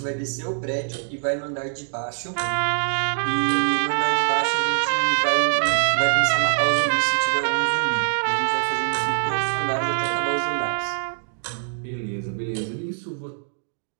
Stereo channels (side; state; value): left; silent; digital silence